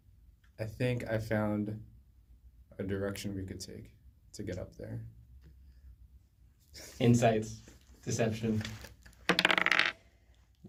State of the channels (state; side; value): identical; both; correlation 1.00